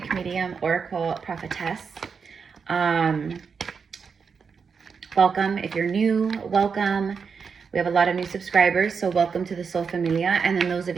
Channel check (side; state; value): left; quieter; 5.8 dB